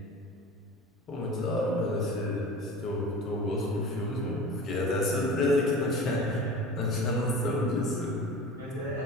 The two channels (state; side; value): normal; both; correlation 0.36